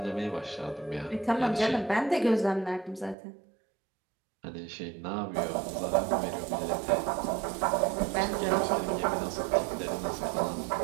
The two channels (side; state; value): left; drops out; at 3.2 s